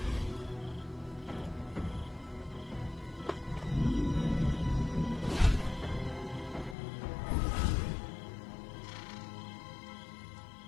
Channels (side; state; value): right; drops out; at 6.8 s